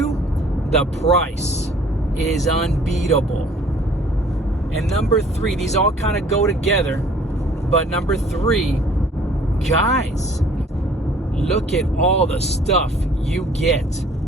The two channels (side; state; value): both; normal; correlation 0.55